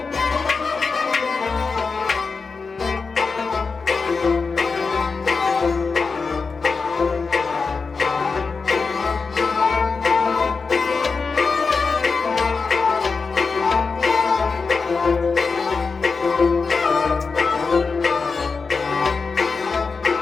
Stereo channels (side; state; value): right; quieter; 4.7 dB